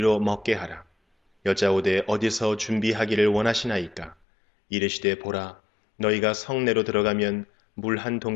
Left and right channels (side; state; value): right; drops out; at 4.2 s